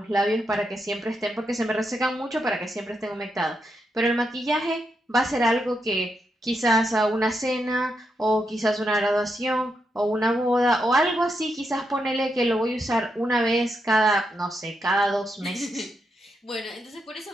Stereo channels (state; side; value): normal; both; correlation 0.83